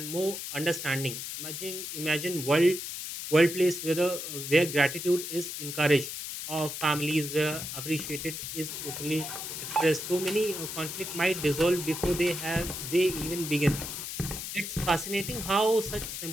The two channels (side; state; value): left; noise; hiss, 6 dB below the sound